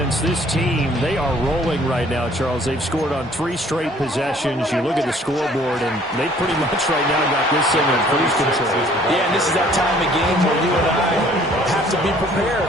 this team, they are rolling right now, Charles. They've scored on 3 straight possessions. You look at the scoreboard, and they pretty much right now got this thing in cruise control. Yeah, and this is that time of game where you and I have to be prepared,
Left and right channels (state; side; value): normal; both; correlation 0.57